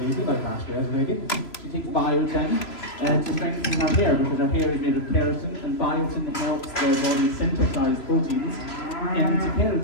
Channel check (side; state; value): right; late; 3.0 ms